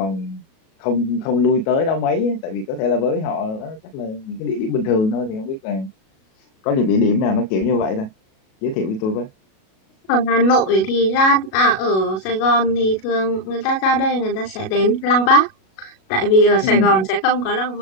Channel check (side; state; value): right; late; 37 ms